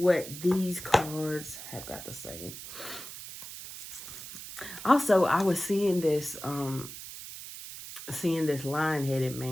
these cards have got to say. Also, I was seeing this lion-headed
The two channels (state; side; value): noise; right; hiss, 11 dB below the sound